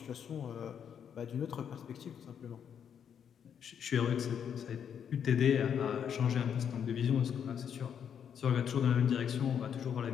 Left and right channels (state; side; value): quieter; right; 8.1 dB